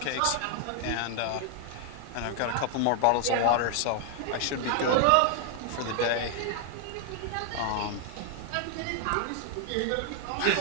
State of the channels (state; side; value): different; both; correlation 0.00